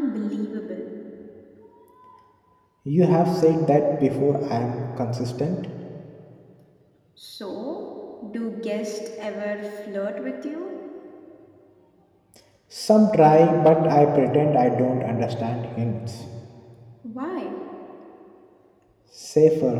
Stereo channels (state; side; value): identical; both; correlation 1.00